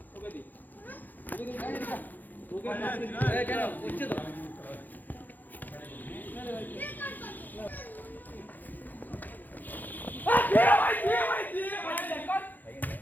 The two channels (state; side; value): late; right; 0.085 ms